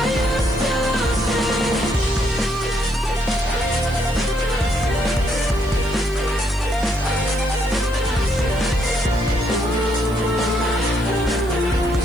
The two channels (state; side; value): noise; right; hiss, 24 dB below the sound